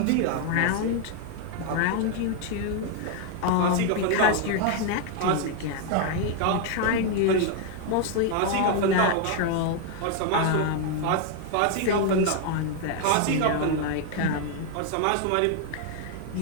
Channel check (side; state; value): both; different; correlation 0.00